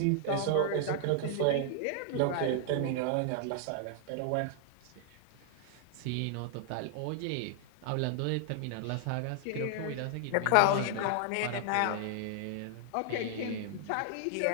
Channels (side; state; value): both; different; correlation -0.01